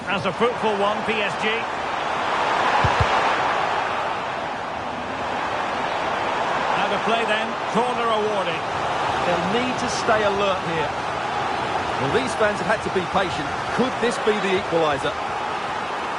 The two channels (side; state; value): both; identical; correlation 1.00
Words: as a fruitful one, PSG. Play then, corner awarded. They'll need to stay alert here. Well, these fans have had to be patient. Could this be the equaliser?